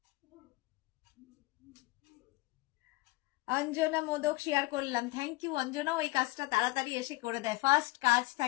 অঞ্জনা মোদক শেয়ার করলাম, থ্যাংক ইউ অঞ্জনা। ওই কাজটা তাড়াতাড়ি এসে করে দেয়, ফার্স্ট কাজ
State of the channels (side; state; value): right; quieter; 21.5 dB